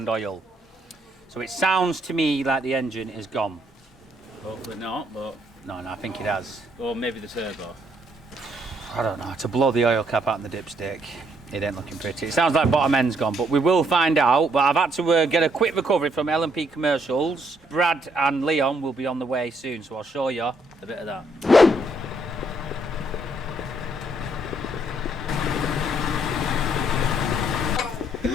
oil. So it sounds to me like the engine is gone. Hopefully not, but. No, I think it has. Or maybe the turbo. I don't know, to blow the oil cap out in the dipstick, it ain't looking pretty. It sounds like bottom end's gone, but we will find out. But I've had to get a quick recovery from L&P Commercials. Brad and Leon will be on the way soon, so I'll show you a bit of that.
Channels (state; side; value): normal; both; correlation 0.71